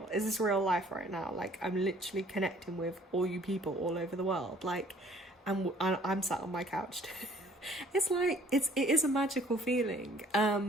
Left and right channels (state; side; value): normal; both; correlation 0.57